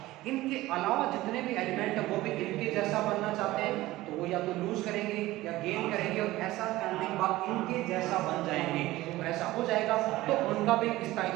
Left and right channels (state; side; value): quieter; left; 17.5 dB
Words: इनके अलावा जितने भी एलिमेंट है वो भी इनके जैसा बनना चाहते हैं, तो वो या तो लूज करेंगे या गेन करेंगे और ऐसा करने के बाद इनके जैसा बन जाएंगे। और ऐसा हो जाएगा तो उनका भी